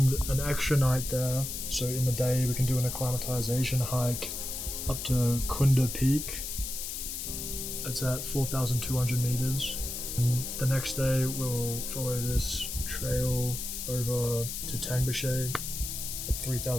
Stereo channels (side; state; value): left; noise; hiss, 5 dB below the sound